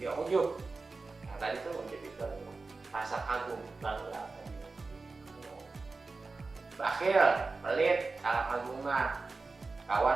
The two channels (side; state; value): left; quieter; 3.9 dB